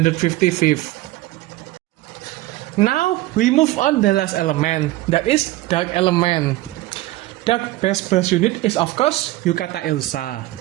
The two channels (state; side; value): quieter; left; 17.5 dB